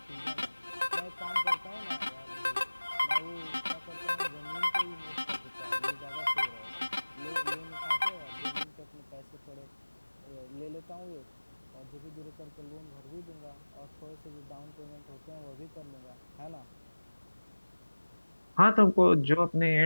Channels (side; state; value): both; inverted; correlation -1.00